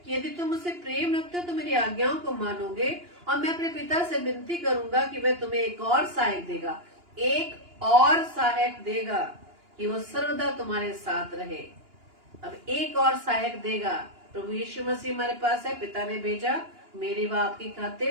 कि यदि तुम मुझसे प्रेम रखते हो तो मेरी आज्ञाओं को मानोगे, और मैं अपने पिता से विनती करूंगा कि वह तुम्हें एक और सहायक देगा, एक और सहायक देगा कि वो सर्वदा तुम्हारे साथ रहे। अब एक और सहायक देगा। प्रभु यीशु मसीह हमारे पास है, पिता ने भेजा मेरी व आपकी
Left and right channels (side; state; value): left; late; 2.9 ms